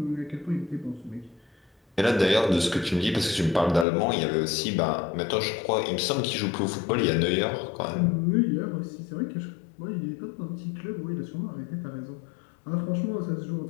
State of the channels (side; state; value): right; drops out; at 3.9 s